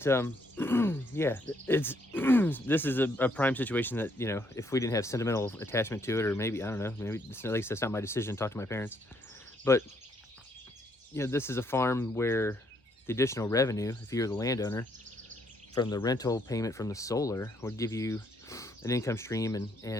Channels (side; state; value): both; normal; correlation 0.71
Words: yeah, it's this is a prime situation that, you know, if we didn't have sentimental attachment to it, or maybe, I don't know, maybe at least that's not my decision, talk to my parents. But, you know, this is a farm where the additional revenue, if you're the landowner, from the rental payment from the solar would give you an income stream